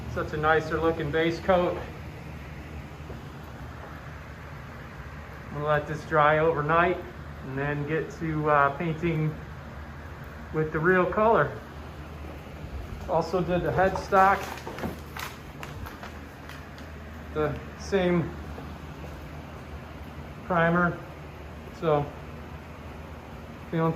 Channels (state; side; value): identical; both; correlation 1.00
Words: Such a nicer looking base coat. I'm gonna let this dry overnight and then get to painting with the real color. Also did the headstock, the same primer, so feeling